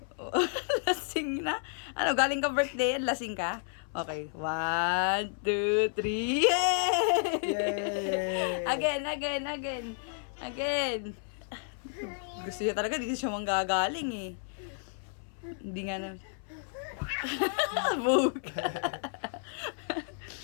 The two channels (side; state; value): right; silent; 57 dB below the other